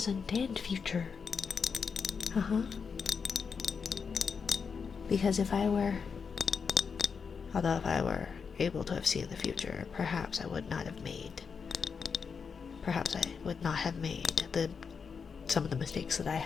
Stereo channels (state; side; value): quieter; right; 5.9 dB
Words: and future. Because if I were able to have seen the future, perhaps I would not have made some of the mistakes that I